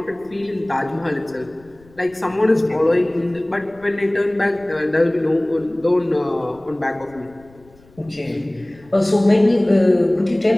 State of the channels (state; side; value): noise; left; rumble, 27 dB below the sound